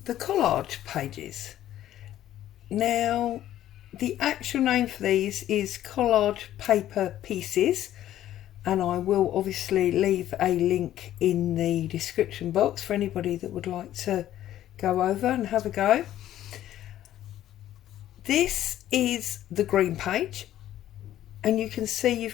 the collage pages. Now, the actual name for these is collage paper pieces, and I will obviously leave a link in the description box for anybody that would like to go over and have a go. This is the green page, and you can see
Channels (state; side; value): quieter; right; 12.6 dB